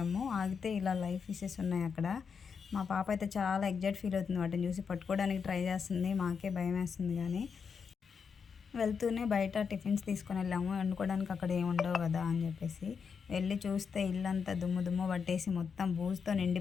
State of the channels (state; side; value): quieter; right; 6.1 dB